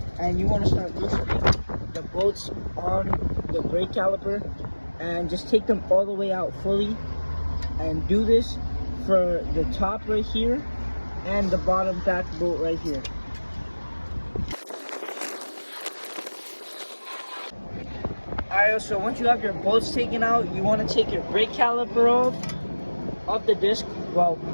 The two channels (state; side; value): inverted; both; correlation -1.00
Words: and you want to start loosening the bolts on the brake caliper and just take them all the way out fully, and do this for the top right here and the bottom back bolt right here. Alright, so once you have your bolts taken out, you want to take your brake caliper off the disc. Well,